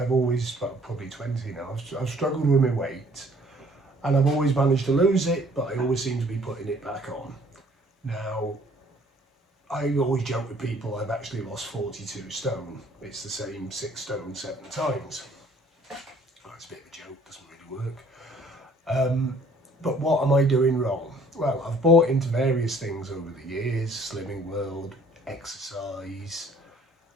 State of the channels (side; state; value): both; normal; correlation 0.58